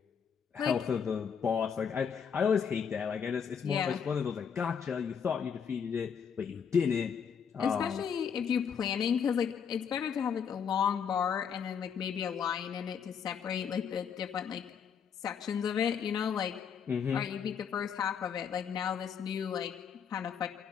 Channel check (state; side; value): quieter; right; 7.1 dB